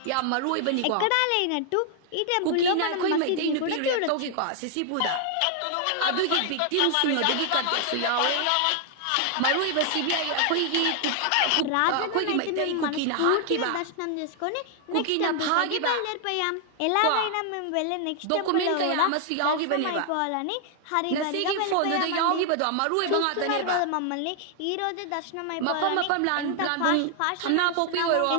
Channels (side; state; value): both; different; correlation 0.00